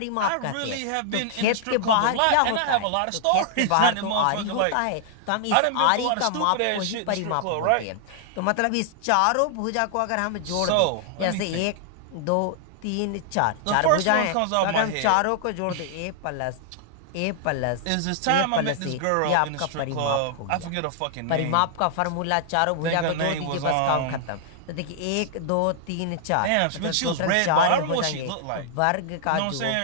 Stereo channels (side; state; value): both; different; correlation -0.01